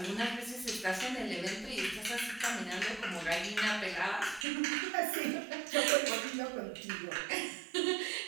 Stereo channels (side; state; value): left; drops out; at 4.5 s